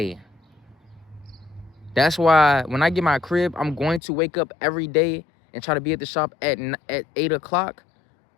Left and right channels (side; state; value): right; drops out; at 4.0 s